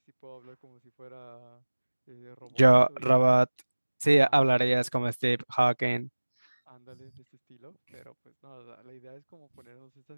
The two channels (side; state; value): both; inverted; correlation -1.00